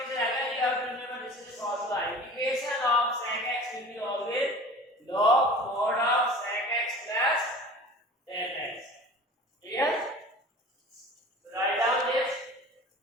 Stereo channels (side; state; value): both; normal; correlation 0.41